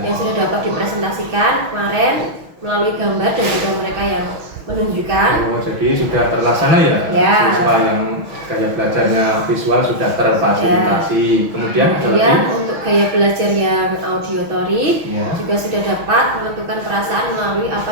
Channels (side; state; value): left; late; 6.1 ms